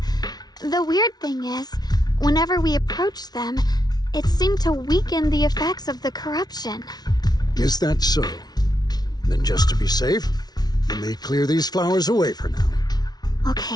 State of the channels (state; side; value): late; right; 0.19 ms